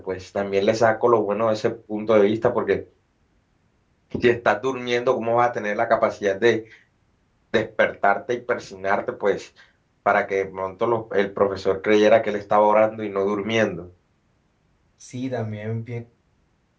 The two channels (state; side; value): identical; both; correlation 1.00